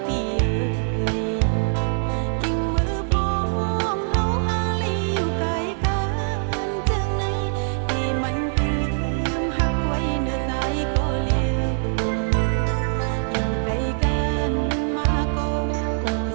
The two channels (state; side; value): silent; left; 63 dB below the other